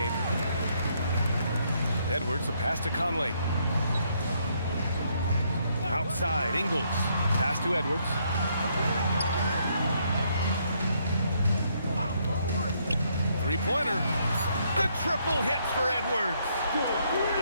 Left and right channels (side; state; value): both; inverted; correlation -0.72